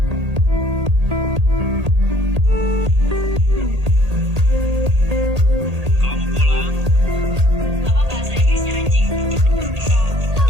Kalau mau pulang, Apa bahasa Inggrisnya anjing? So,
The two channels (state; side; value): late; left; 1.8 ms